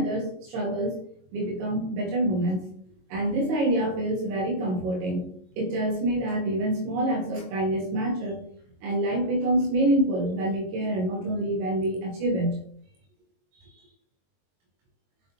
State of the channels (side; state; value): left; late; 22 ms